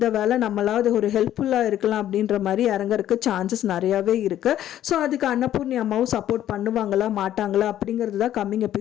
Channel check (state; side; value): quieter; right; 11.9 dB